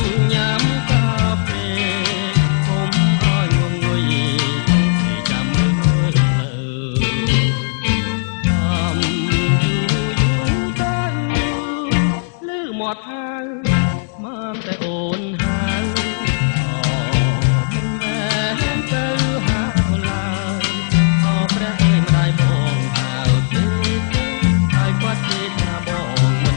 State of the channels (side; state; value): right; silent; digital silence